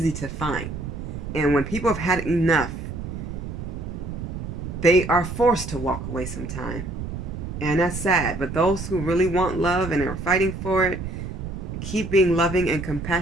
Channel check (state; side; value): noise; right; rumble, 7 dB below the sound